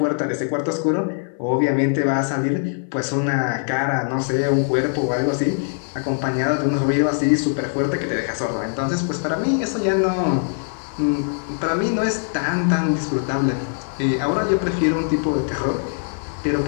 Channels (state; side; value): silent; right; 61 dB below the other